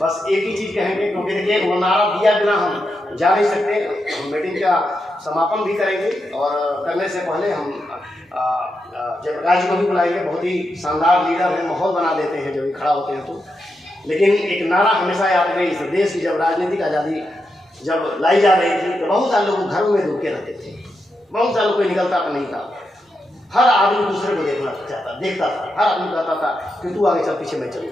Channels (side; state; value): both; normal; correlation 0.85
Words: एक ही चीज कहेंगे, क्योंकि देखिए वो नारा दिया बिना हम जा नहीं सकते। हम मीटिंग का समापन भी करेंगे और करने से पहले हम जयप्रकाश जी को भी बुलाएंगे। बहुत ही शानदार लीडर हैं, माहौल बना देते हैं जब भी खड़ा होते हैं तो। लेकिन एक नारा हमेशा याद रहे, इस देश की जब राजनीतिक आज़ादी जब लाई जा रही थी तो बहुत सारे लोग घरों में रुके रहते थे, बहुत सारे कोई निकलता तो नहीं था। हर आदमी दूसरे को देखता था। हर आदमी कहता था कि तू आगे चल, पीछे मैं